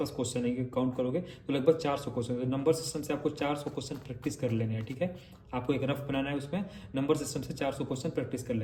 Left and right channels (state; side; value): identical; both; correlation 1.00